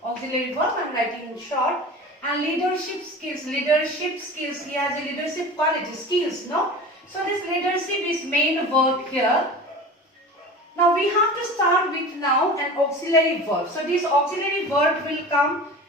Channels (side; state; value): both; normal; correlation 0.35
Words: Auxiliary verb, I am writing in short. And leadership skills. He has a leadership quality, skills, no? So this leadership is main verb here. Now we have to start with now an auxiliary verb. So this auxiliary verb will come